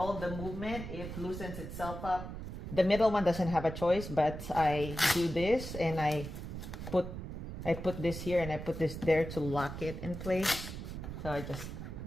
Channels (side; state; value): right; noise; rumble, 8 dB below the sound